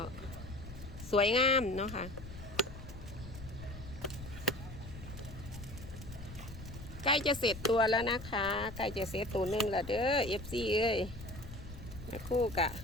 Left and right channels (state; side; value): noise; left; rumble, 13 dB below the sound